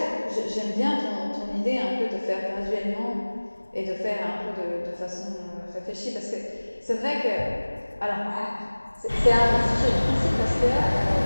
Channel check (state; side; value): inverted; both; correlation -1.00